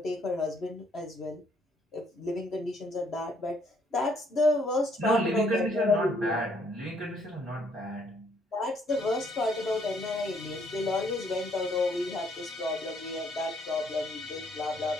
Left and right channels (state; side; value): normal; both; correlation 0.67